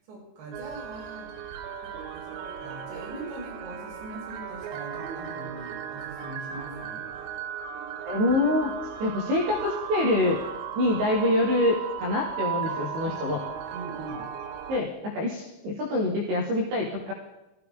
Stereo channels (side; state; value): left; late; 19 ms